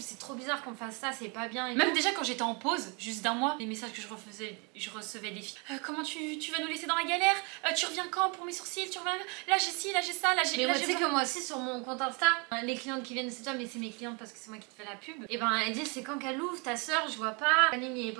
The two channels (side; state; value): left; quieter; 32.2 dB